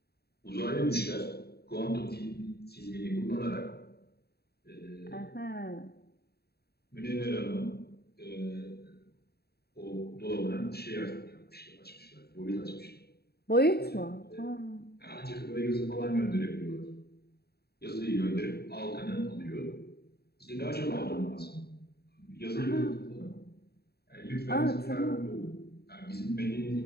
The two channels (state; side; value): late; right; 0.46 ms